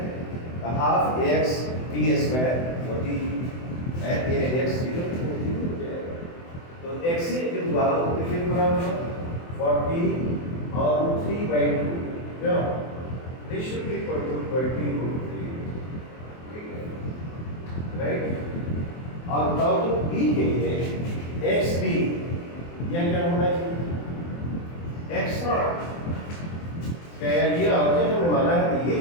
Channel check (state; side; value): late; right; 24 ms